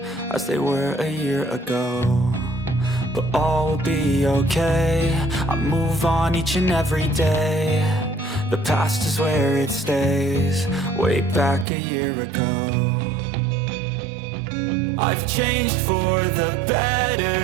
as they were a year ago, but all will be okay. I move on each and every day. The past is where it stays, way back a year ago. I've changed for the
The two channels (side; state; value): left; drops out; at 11.7 s